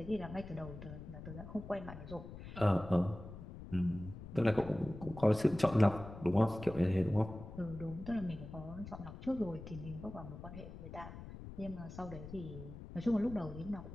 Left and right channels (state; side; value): noise; left; rumble, 12 dB below the sound